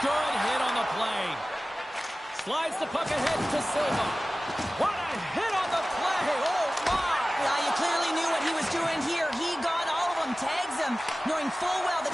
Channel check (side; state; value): both; normal; correlation 0.97